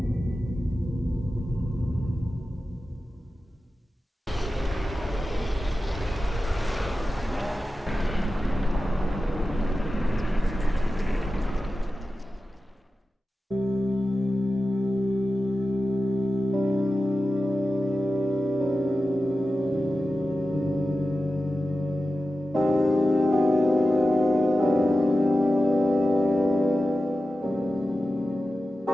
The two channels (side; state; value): both; normal; correlation 0.93